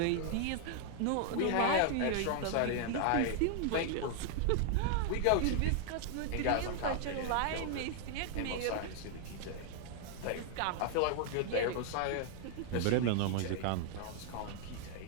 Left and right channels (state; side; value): different; both; correlation 0.00